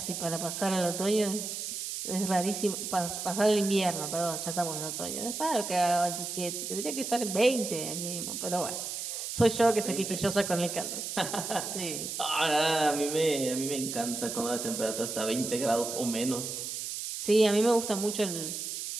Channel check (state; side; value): noise; right; hiss, 5 dB below the sound